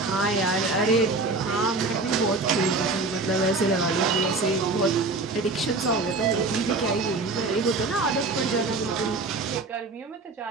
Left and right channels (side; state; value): left; quieter; 3.5 dB